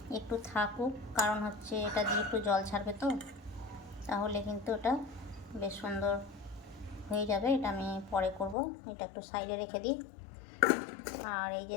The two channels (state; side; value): drops out; right; at 8.6 s